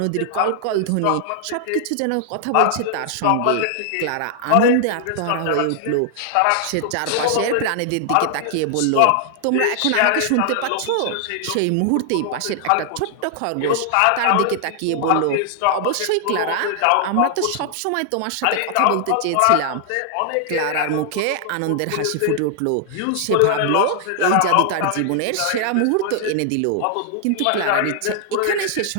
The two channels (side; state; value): both; different; correlation 0.00